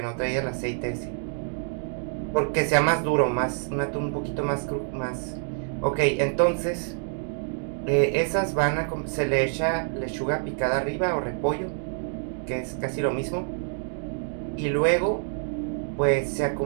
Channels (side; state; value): left; silent; digital silence